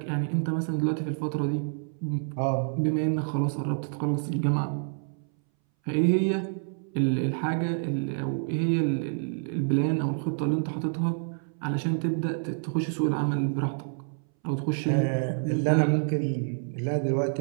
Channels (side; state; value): left; silent; 59 dB below the other